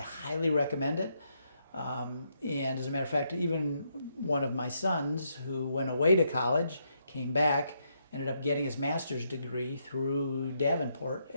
recommend it. And as a matter of fact, even one of my sons who went away to college, came back, ended up getting his master's degree through Davenport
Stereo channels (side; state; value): both; inverted; correlation -0.77